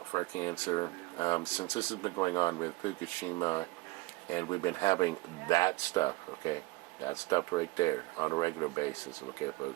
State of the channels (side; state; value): left; quieter; 21.4 dB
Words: for cancer. Since this has been going on with Fukushima, and we've been having that stuff, okay, that stuff right there on a regular basis, okay,